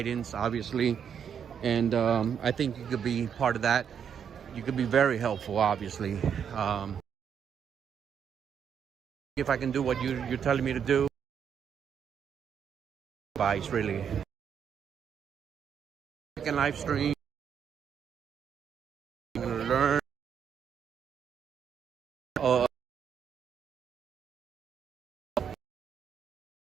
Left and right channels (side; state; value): left; quieter; 7.9 dB